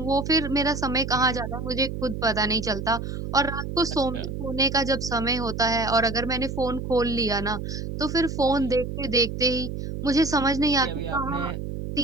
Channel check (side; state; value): right; noise; hum, 6 dB below the sound